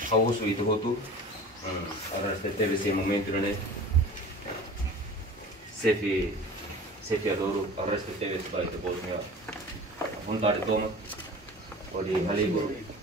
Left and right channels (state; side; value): normal; both; correlation 0.39